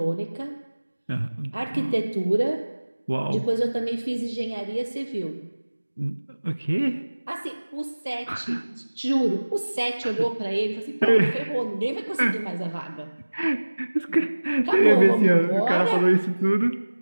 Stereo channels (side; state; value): both; inverted; correlation -1.00